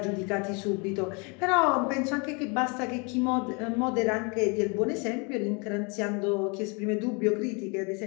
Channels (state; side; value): quieter; right; 32.1 dB